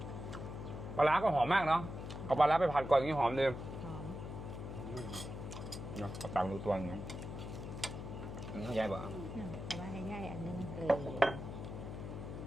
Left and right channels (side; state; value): left; noise; hum, 8 dB below the sound